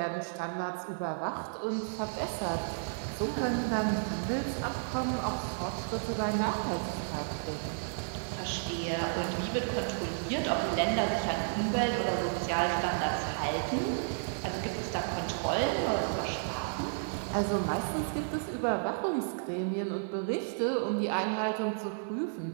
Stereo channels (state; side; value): silent; left; 56 dB below the other